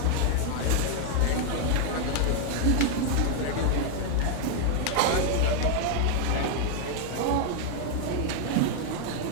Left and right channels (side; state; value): both; different; correlation 0.00